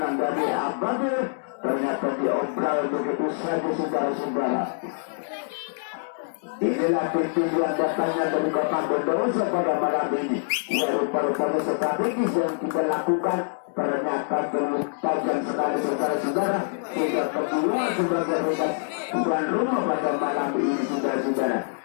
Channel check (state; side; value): silent; right; digital silence